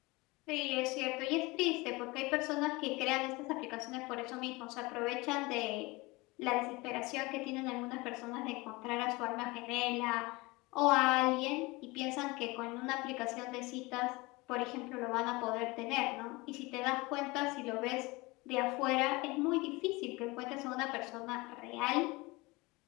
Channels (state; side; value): quieter; right; 23.5 dB